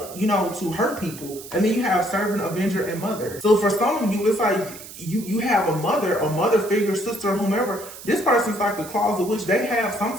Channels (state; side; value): noise; right; hiss, 15 dB below the sound